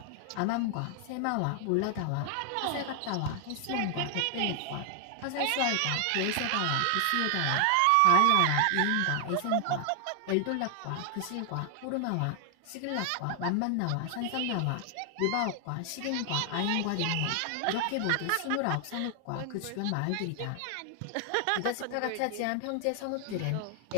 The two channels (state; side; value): different; both; correlation 0.00